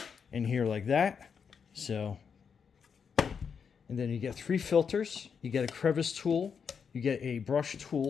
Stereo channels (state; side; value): quieter; right; 6.5 dB